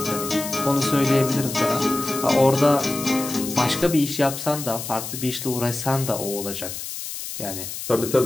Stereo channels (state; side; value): noise; left; hiss, 8 dB below the sound